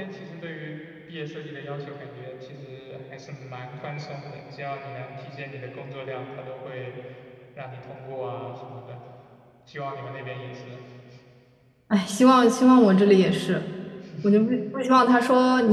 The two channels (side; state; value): both; identical; correlation 1.00